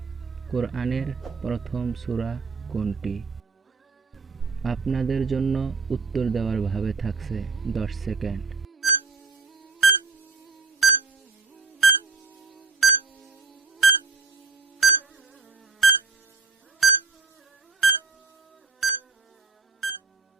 কোরআনের প্রথম সূরা কোনটি? আপনাদের জন্য উত্তর দেওয়ার ভাবে থাকছে 10 সেকেন্ড।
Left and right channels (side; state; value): left; quieter; 5.1 dB